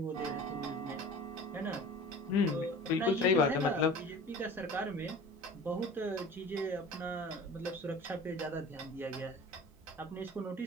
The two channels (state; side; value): normal; both; correlation 0.39